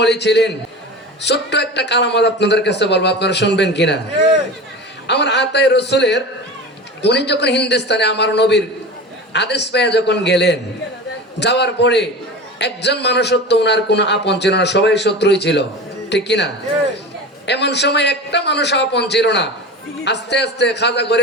ওলি ছিলেন। ছোট্ট একটা কারামত আপনাদের কাছে বলবো, আপনারা শুনবেন কিনা। আমার আতায়ে রসুলের উনি যখন হিন্দুস্তানে আমার নবীর আদেশ পেয়ে যখন গেলেন, যাওয়ার পরে একজন মানুষ তো ওনার কোনো আপন ছিল না, সবাই শত্রুই ছিল, ঠিক কিনা। এমন সময় একটা মানুষ আপন ছিল না। আস্তে আস্তে খাজা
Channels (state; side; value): normal; both; correlation 0.31